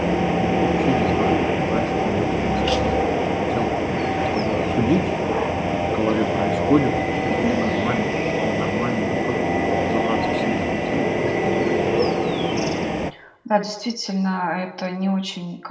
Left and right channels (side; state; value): both; identical; correlation 1.00